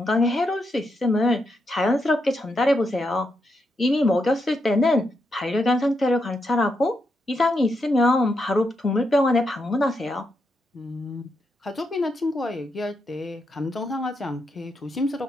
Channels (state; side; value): normal; both; correlation 0.82